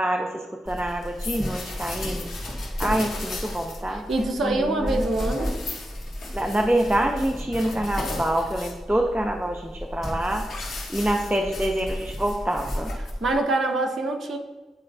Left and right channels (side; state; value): both; normal; correlation 0.87